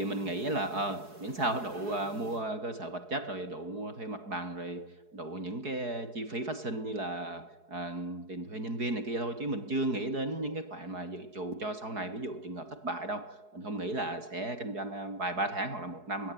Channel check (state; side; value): late; left; 4.7 ms